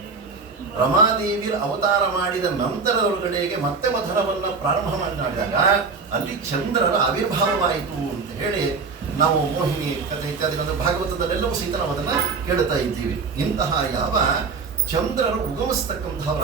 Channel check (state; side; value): quieter; left; 4.7 dB